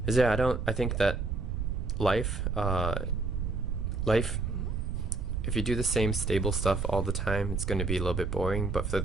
I think that life, if you do the same stable stuff all the time, it's going to be a little bit boring. But for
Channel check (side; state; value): right; noise; rumble, 2 dB below the sound